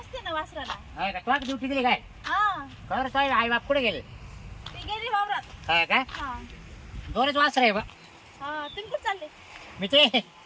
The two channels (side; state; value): both; identical; correlation 1.00